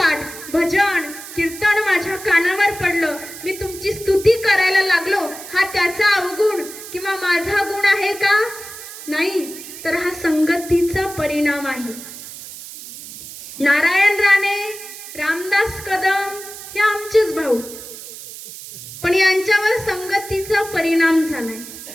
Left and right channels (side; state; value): right; noise; hiss, 13 dB below the sound